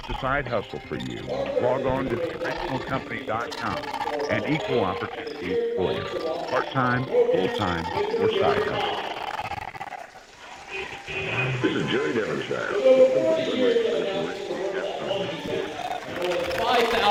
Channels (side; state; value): both; identical; correlation 1.00